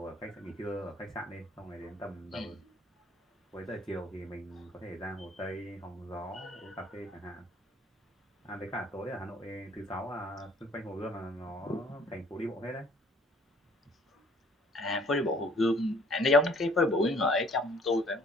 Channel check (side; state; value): both; normal; correlation 0.58